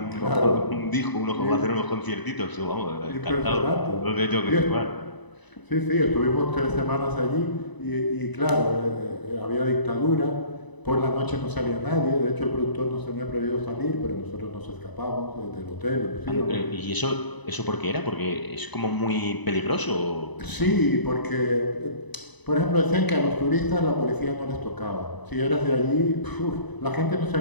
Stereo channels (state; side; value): late; right; 1.0 ms